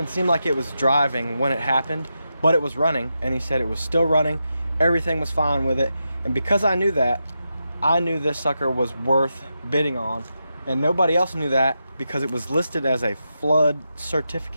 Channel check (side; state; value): both; inverted; correlation -0.87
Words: seem like it was driving when it happened, but it was running, and he said it was still running. Everything was fine with it. And because I knew that, I knew this sucker was worth bidding on, and nobody else knew that because it was listed as a flood